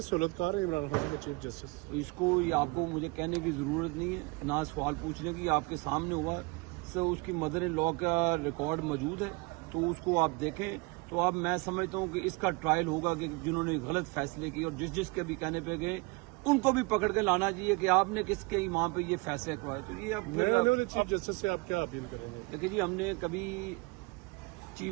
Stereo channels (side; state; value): left; quieter; 27.1 dB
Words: ہے عمران خان کے چیف جسٹس؟ اس کو یہ آپ کو مجھے کہنے کی ضرورت نہیں ہے، نہ سوال پوچھنے کی، آپ کے سامنے ہوا سو اس کی مدر ان لا کا ریکارڈ موجود ہے، تو اس کو آپ دیکھیں۔ تو اب میں سمجھتا ہوں کہ اس کا ٹرائل ہوگا کہ جنہوں نے غلط فیصلے کیے اور جس کے بھی کہنے پہ گئے ان کو بھی پکڑ کے لانا چاہیے کہ آپ نے کس کے ایمان پہ یہ فیصلے کروائے۔ تو یہ اب چیف جسٹس سے آپ کیا اپیل کریں گے؟ دیکھیے جی، ہم نے کبھی